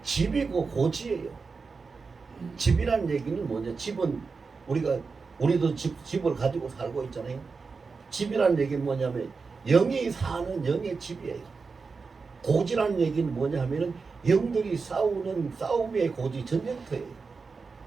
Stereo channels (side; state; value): left; quieter; 4.7 dB